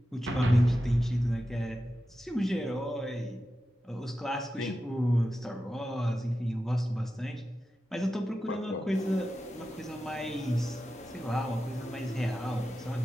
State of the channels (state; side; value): normal; both; correlation 0.92